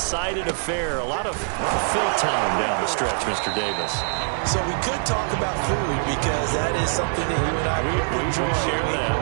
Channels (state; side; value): silent; left; digital silence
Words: affair. A lot of fill time down the stretch, Mr. Davis. So we could talk about food because that is something that you and I enjoy. We share